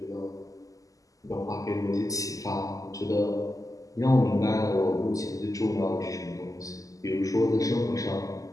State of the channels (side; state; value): right; late; 0.17 ms